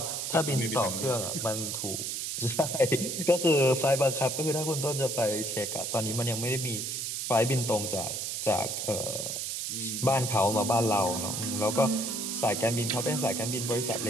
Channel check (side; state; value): right; noise; hiss, 3 dB below the sound